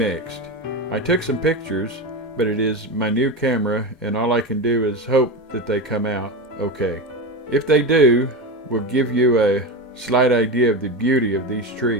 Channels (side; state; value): both; normal; correlation 0.20